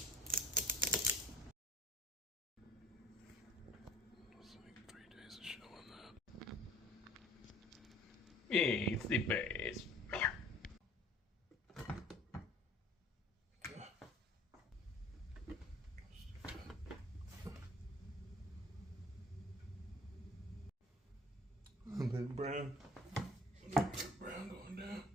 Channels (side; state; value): both; normal; correlation 0.48